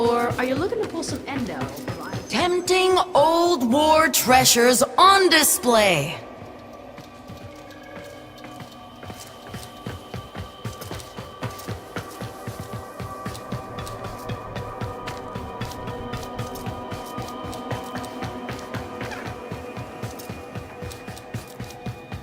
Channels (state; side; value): identical; both; correlation 1.00